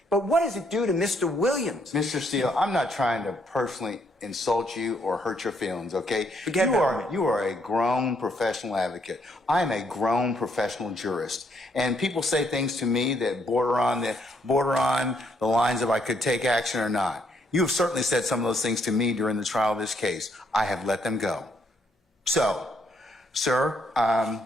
But what does it do to Mr. Williams? Mr. Steele, I'm not trying to personally insult you or hurt your feelings, okay? You are a grown professional advocate. I am a grown professional jurist. And people say things to me that border on the lines of I could take action or not. You have certainly said some of those things to me during the trial of this case. I have let them go. So, sir,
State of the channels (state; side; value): normal; both; correlation 0.72